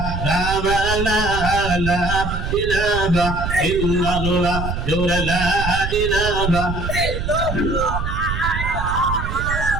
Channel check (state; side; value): noise; right; rumble, 4 dB below the sound